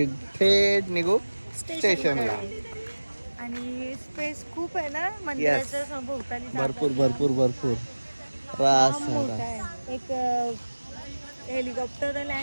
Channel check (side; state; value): both; inverted; correlation -1.00